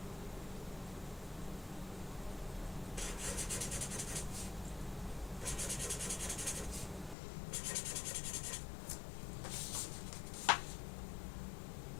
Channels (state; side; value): drops out; right; at 7.2 s